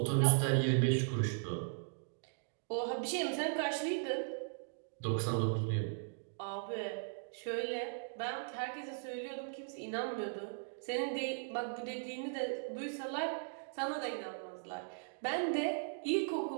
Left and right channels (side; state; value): left; silent; digital silence